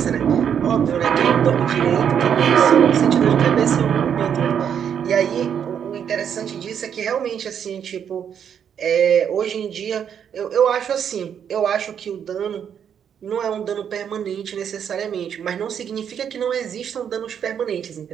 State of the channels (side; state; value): left; quieter; 8.3 dB